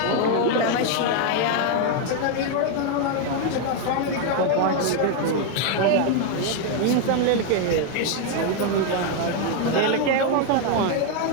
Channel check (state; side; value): different; both; correlation 0.01